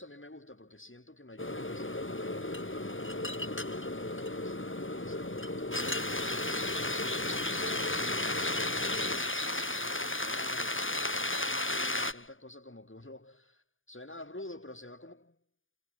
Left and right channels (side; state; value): right; late; 0.58 ms